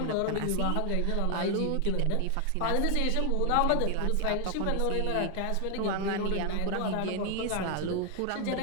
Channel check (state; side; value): different; both; correlation 0.00